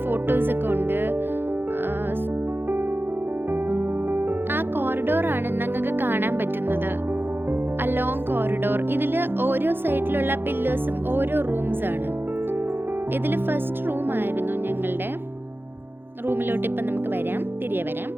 ഫോട്ടോസ് ഒക്കെ ഉണ്ട്. ആ കോറിഡോറാണ് നിങ്ങൾക്ക് കാണാൻ പറ്റുന്നത്, ആ ലോങ് കോറിഡോർ. ഇതിൽ ഓരോ സൈഡിലുള്ള പില്ലേഴ്സും ഓരോ റൂംസ് ആണ്. ഇതിൽ ഫസ്റ്റ് റൂം ആയിരുന്നു ഞങ്ങളുടെ. റൂമിലോട്ട് ഇപ്പം നമുക്ക് തിരികെ വരാം.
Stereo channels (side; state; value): left; late; 0.10 ms